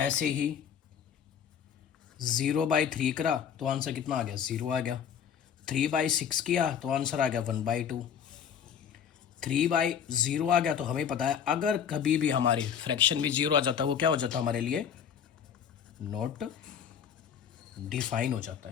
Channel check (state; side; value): quieter; right; 8.1 dB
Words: ही 0/3 करा तो आंसर कितना आ गया? 0 आ गया। 3/6 किया तो आंसर आ गया 1/2। 3/0 आ गया। तो हमें पता है अगर कभी भी हमारे फ्रैक्शन में 0 आ जाता है, वो क्या हो जाता है हमारे लिए? नॉट डिफाइन हो जाता